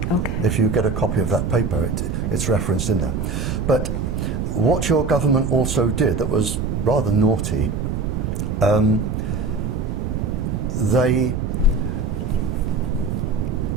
Okay. If you get a copy of that paper, it's referenced in there. But what your government also did that was rather naughty, they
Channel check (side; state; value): right; noise; rumble, 1 dB below the sound